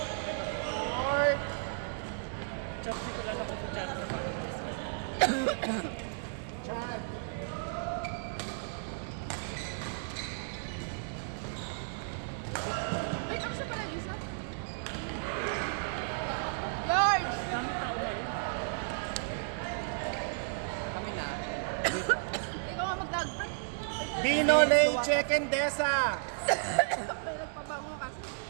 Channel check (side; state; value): left; silent; digital silence